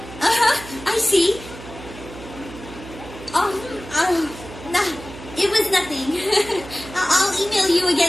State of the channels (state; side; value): noise; right; hum, 15 dB below the sound